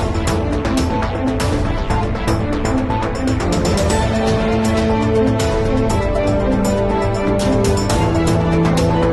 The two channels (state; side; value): identical; both; correlation 1.00